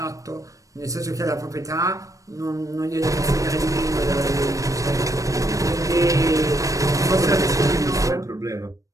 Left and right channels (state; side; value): late; left; 0.16 ms